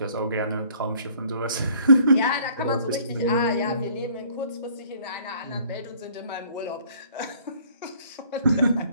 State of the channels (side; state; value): both; inverted; correlation -0.58